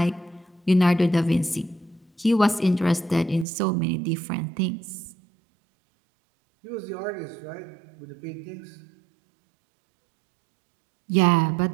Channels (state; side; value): drops out; left; at 3.5 s